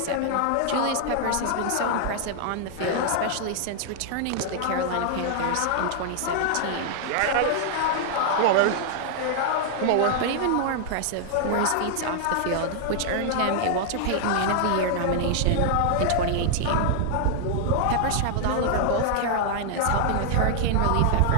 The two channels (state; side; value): different; both; correlation -0.01